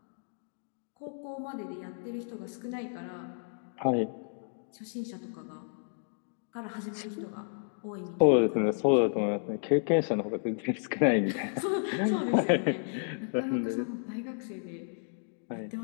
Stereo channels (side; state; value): right; silent; digital silence